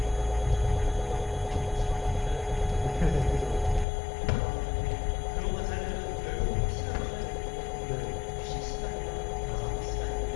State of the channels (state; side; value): drops out; right; at 3.9 s